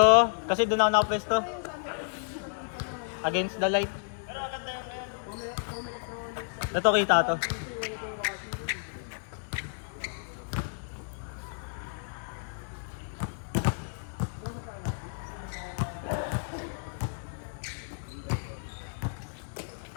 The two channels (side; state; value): right; silent; digital silence